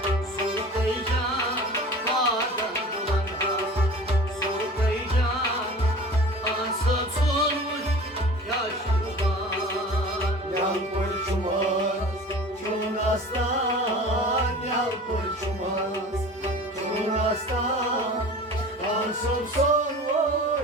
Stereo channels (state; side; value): normal; both; correlation 0.40